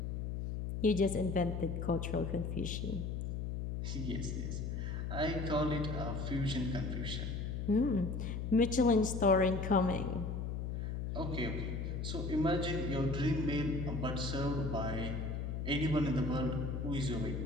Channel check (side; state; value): left; noise; hum, 3 dB below the sound